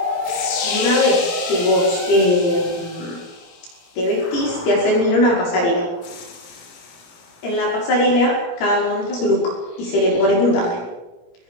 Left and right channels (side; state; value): right; late; 18 ms